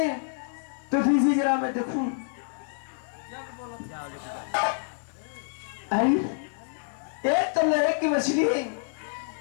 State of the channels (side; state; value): right; silent; 59 dB below the other